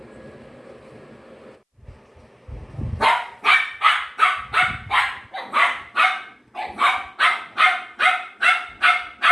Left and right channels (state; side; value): identical; both; correlation 1.00